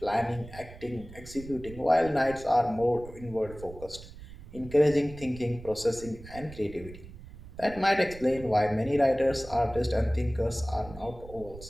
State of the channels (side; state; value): right; noise; rumble, 16 dB below the sound